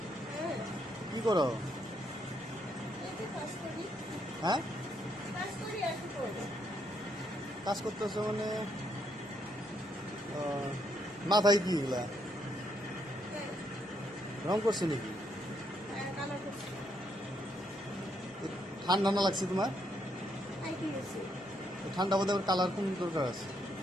কি করো? এই যে কাজ করি। হ্যাঁ, কাজ করি আর কি করবো? কাজ করতেছো মানে মাথায় কি এগুলা হ্যাঁ, রং করছো নাকি? কালার করছি। ঠান্ডা না লাগছে তোমার? আর কি হয়েছে? ঠান্ডা বোধ কালার কোন দরকার আছে?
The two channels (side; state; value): both; normal; correlation 0.75